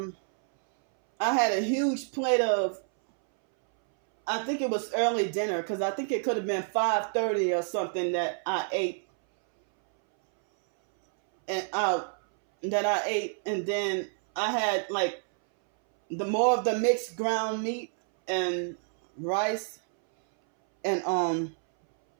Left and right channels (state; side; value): silent; left; 59 dB below the other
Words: had a huge plate of, I think it was early dinner, because I think it could have been 5:30 or something that I ate. And then I had like more of the mixed ground meat and rice, and